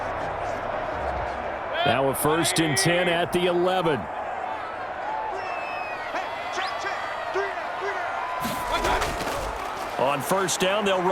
Now a 1st and 10 at the 11. On 1st down, they'll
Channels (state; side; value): identical; both; correlation 1.00